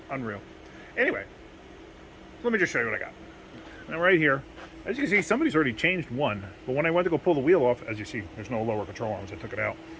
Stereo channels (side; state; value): both; identical; correlation 1.00